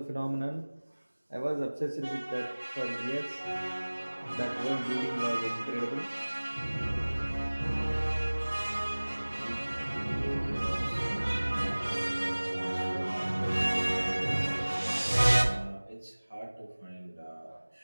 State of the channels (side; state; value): both; inverted; correlation -1.00